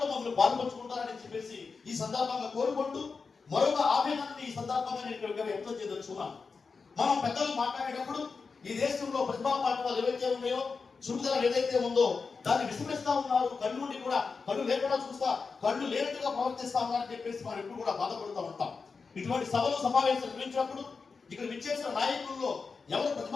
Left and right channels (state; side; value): quieter; right; 4.8 dB